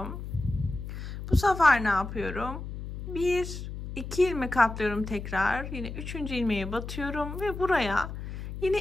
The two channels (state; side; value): noise; left; hum, 8 dB below the sound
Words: Bu sefer ne yapıyorum? 1, 2 ilmek atlıyorum tekrar. Yine 3. ilmeğe batıyorum ve buraya